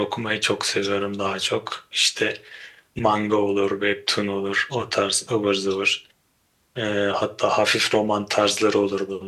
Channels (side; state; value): both; identical; correlation 1.00